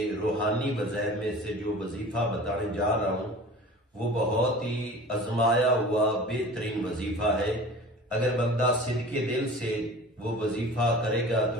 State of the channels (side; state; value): both; normal; correlation 0.40